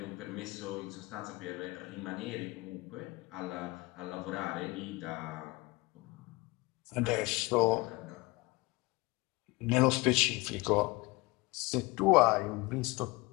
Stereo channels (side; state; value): right; quieter; 23.3 dB